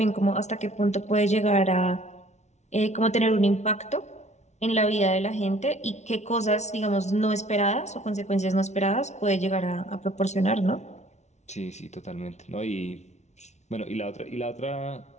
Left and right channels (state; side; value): late; right; 0.32 ms